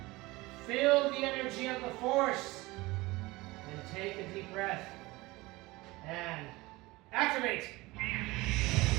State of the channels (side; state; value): left; quieter; 21.2 dB